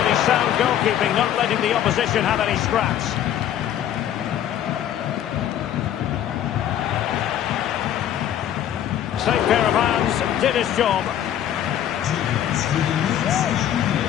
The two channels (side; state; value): right; quieter; 10.8 dB